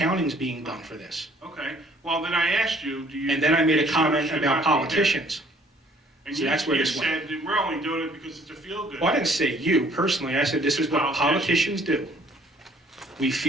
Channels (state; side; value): normal; both; correlation 0.59